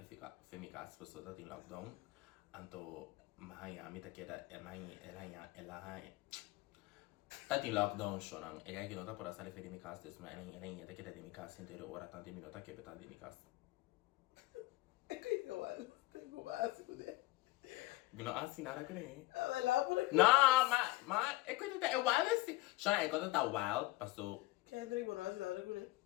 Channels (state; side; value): quieter; right; 19.4 dB